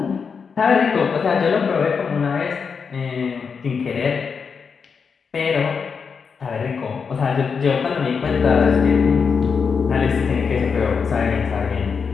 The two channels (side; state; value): right; quieter; 5.8 dB